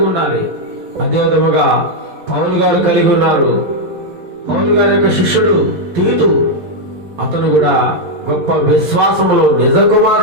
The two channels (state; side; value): late; left; 11 ms